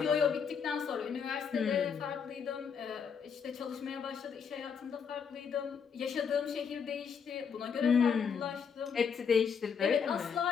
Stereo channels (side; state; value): right; quieter; 6.6 dB